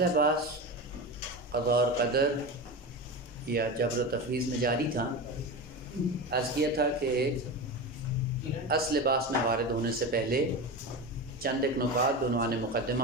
بحث قضاء اور قدر یا جبر و تفویض میں جاری تھا۔ عرض کیا تھا کہ اصل بحث میں وارد ہونے سے پہلے چند ایک نکات بعنوان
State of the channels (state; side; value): normal; both; correlation 0.24